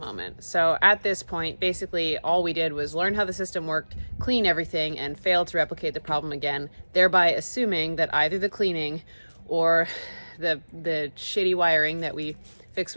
So at this point, basically all we did was learn how the system worked, clean everything, and fail to replicate the problem again, thereby assuming that either the cleaning or the shitty wiring that we fixed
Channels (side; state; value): both; inverted; correlation -1.00